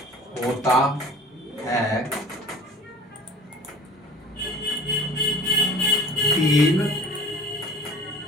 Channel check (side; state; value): both; normal; correlation 0.44